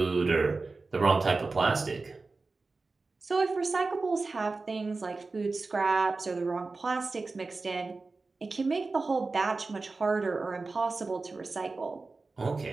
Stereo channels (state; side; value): quieter; left; 3.8 dB